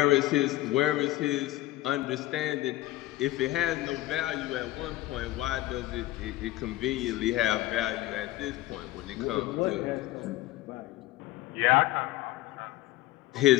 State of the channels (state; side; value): quieter; right; 16.7 dB